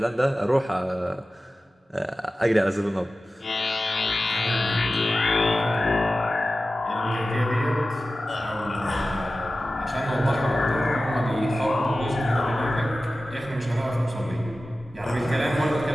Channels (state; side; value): normal; both; correlation 0.95